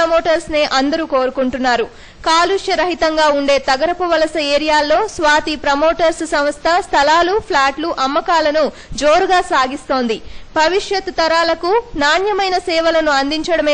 నే అందరూ కోరుకుంటున్నారు. కాలుష్య రహితంగా ఉండే తగరపు వలస ఏరియాల్లో స్వాతి ప్రమోటర్స్ సంస్థ స్థలాలు, ఫ్లాట్లు అమ్మకాలను జోరుగా సాగిస్తోంది. భవిష్యత్ తరాలకు నాణ్యమైన సేవలను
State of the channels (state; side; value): identical; both; correlation 1.00